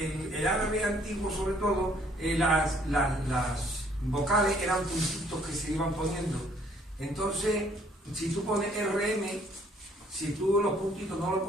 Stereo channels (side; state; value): both; normal; correlation 0.62